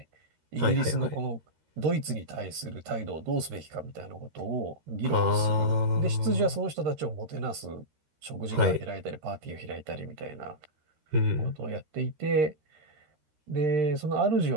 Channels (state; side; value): late; left; 13 ms